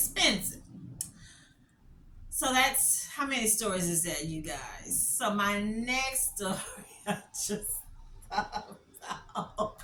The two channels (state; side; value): identical; both; correlation 1.00